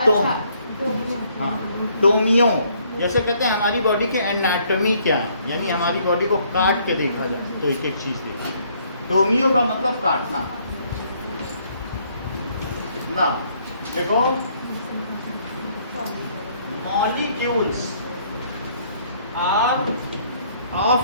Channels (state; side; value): inverted; both; correlation -0.66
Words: हाँ, टोमियो। जैसे कहते हैं हमारी बॉडी की एनाटॉमी क्या है, यानी हमारी बॉडी को काट के देखा जाए तो एक एक चीज देखा। टोमियो का मतलब काटना ना। देखो, molecules are